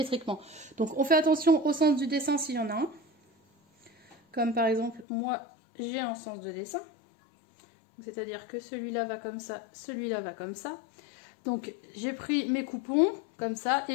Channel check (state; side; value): drops out; right; at 5.1 s